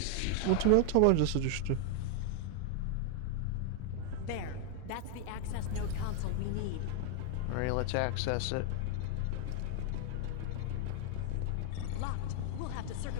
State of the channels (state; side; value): different; both; correlation 0.00